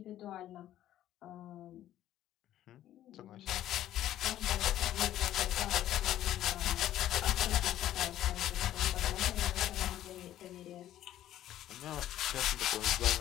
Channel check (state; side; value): quieter; right; 12.7 dB